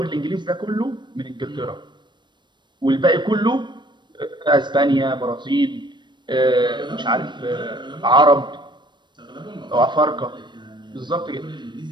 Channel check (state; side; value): late; left; 0.22 ms